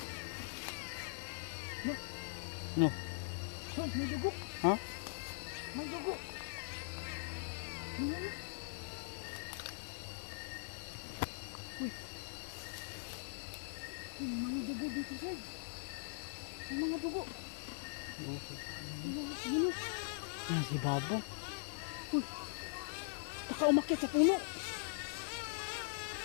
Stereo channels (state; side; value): silent; right; digital silence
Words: No. Sir, may dugo. Ha? May dugo. Wala na. Uy. May mga dugo dito sir. May mga dugo. Ano? Ah, si Babo. Baka umakyat sa puno.